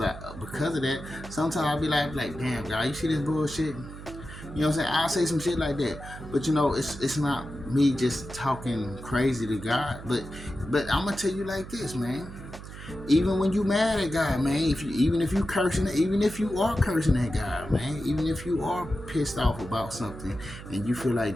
that. Sometimes I'll be like, damn, God, you see this bullshit? You know what I'm saying? I'll say some shit like that. But it's not me just talking crazy to God. But I'm gonna tell you like this, man. Even when you mad at God, man, even if you are cursing at God, man, even if you are pissed off about something and you feel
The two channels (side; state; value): right; noise; hum, 13 dB below the sound